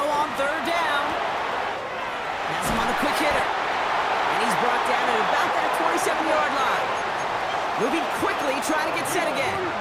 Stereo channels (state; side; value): identical; both; correlation 1.00